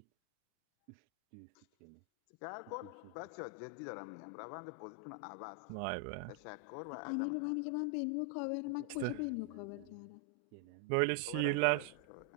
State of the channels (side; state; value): both; different; correlation 0.00